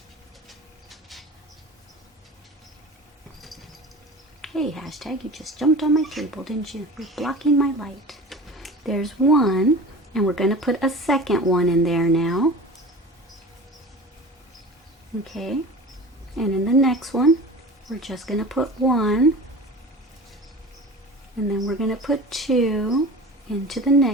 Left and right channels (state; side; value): normal; both; correlation 0.37